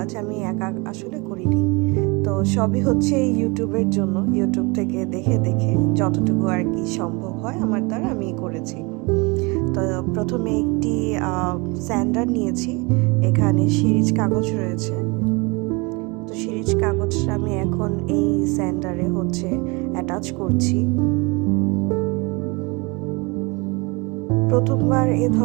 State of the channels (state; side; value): quieter; left; 27.6 dB